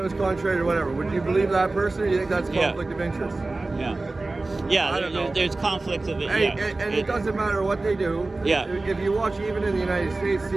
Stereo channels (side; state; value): left; quieter; 3.2 dB